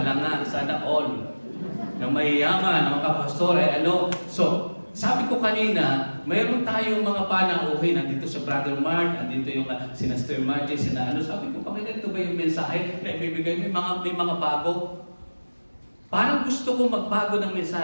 all. Na mayayaman, ang mga pastor ay ano. So, sabi ko kanina, mayroon tayong mga panauhin. Nandito sa Brother Mark, nandito yung sina Sister Margie, sabi ko, pakita ito ba yung mensahe na ibibigay? May mga bago. Parang gusto ko magbago ng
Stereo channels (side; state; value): both; inverted; correlation -1.00